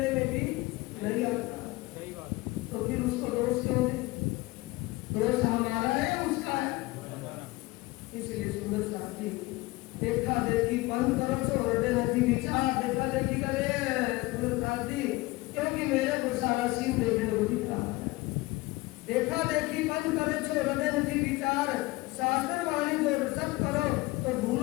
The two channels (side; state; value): right; quieter; 21.2 dB